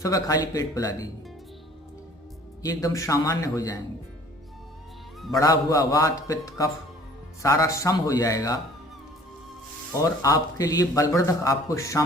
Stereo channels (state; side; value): normal; both; correlation 0.52